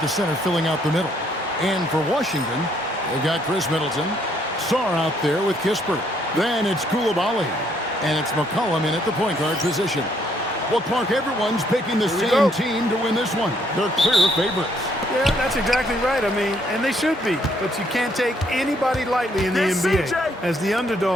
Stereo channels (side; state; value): both; normal; correlation 0.68